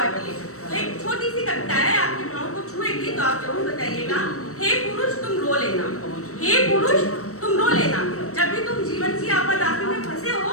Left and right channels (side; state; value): right; late; 0.64 ms